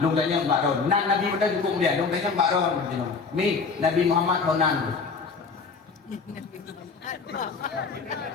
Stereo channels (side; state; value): right; quieter; 4.9 dB